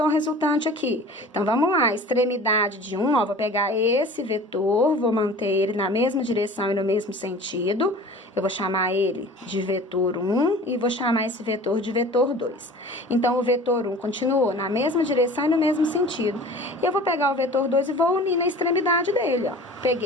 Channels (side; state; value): both; normal; correlation 0.42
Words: resultante aqui? Então, vamos lá, extremidade de 1, ó, vou pegar esse vetor, vou manter ele na mesma direção e no mesmo sentido. Eu vou chamar ele de vetor 1 e vou chamar esse vetor de vetor 2. Então, o vetor 1 continuou na mesma direção e no mesmo sentido. E eu vou pegar o vetor 2 e vou unir na extremidade dele, ó.